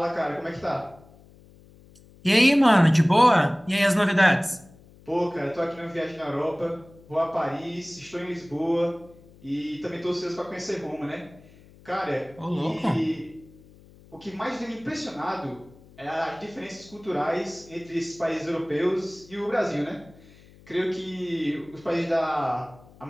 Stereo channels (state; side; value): noise; left; hum, 24 dB below the sound